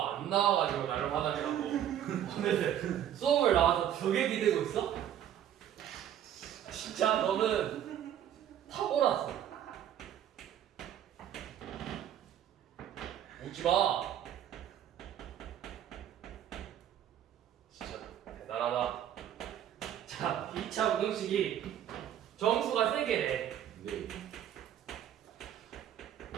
안 나와가지고 나를 화나려고 오늘 수업을 나와서 벽에 기대고 있어? 진짜 너는 타고났어. 웃지마. 진짜 대단하다. 자, 2차 부등식이 정수가 3개래. 네.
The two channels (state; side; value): quieter; left; 10.6 dB